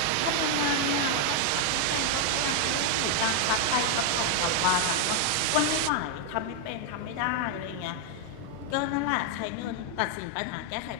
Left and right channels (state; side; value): different; both; correlation 0.00